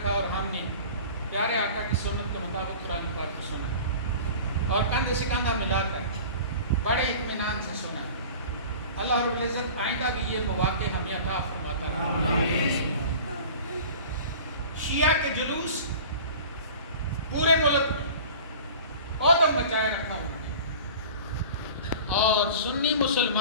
اور ہم نے پیارے آقا کی سنت کے مطابق قرآن پاک کو سنا اور کندھے سے کندھا ملا کر بڑے اطمینان سے سنا۔ اللہ رب العزت آئندہ بھی یہ مواقع ہمیں عطا فرماتا رہے۔ شیعہ کے جلوس پورے ملک میں عدم مچائے رکھا انہوں نے، اور سنی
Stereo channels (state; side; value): inverted; both; correlation -0.40